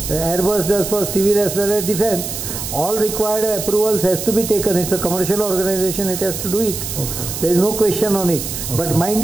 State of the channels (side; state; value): right; noise; hiss, 6 dB below the sound